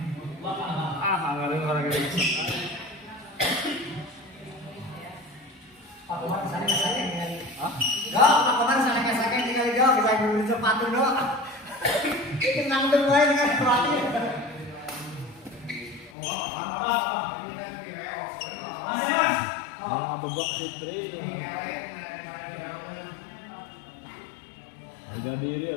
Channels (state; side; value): drops out; right; at 16.1 s